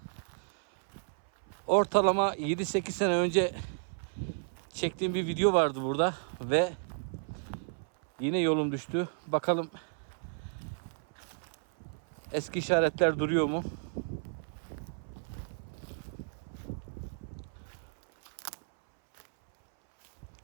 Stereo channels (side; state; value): left; silent; 56 dB below the other